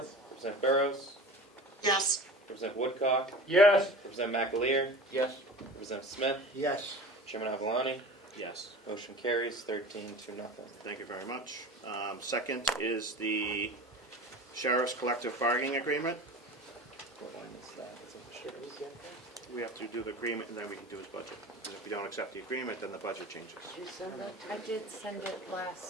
Representative Burrows? Yes. Representative Woodcock? Yes. Representative McAleer? Yes. Representative Smith? Yes. Chairman Avalani? Yes. Motion carries 13-0. Thank you very much. Second is the Sheriff's Collective Bargaining Agreement. What line is that? Is it- Should we get that? We have to do the agreement and then we can do his budget. And if we don't accept the agreement, then the budget changes. Did you send that to I did send it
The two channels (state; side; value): normal; both; correlation 0.36